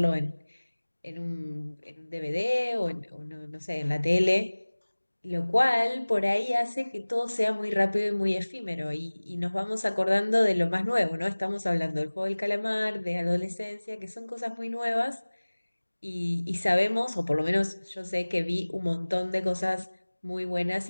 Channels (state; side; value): inverted; both; correlation -1.00